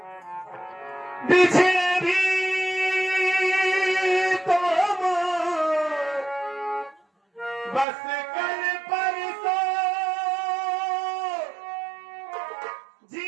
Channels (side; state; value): left; drops out; at 7.9 s